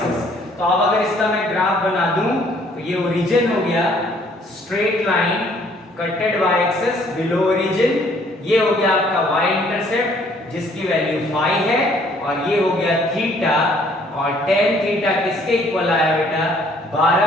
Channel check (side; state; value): both; normal; correlation 0.61